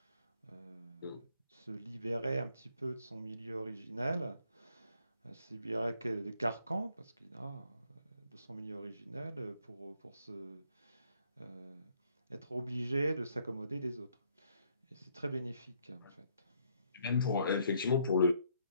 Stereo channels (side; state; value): both; inverted; correlation -0.69